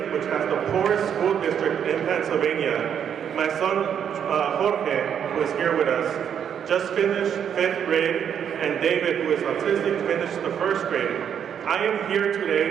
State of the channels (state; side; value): quieter; left; 8.4 dB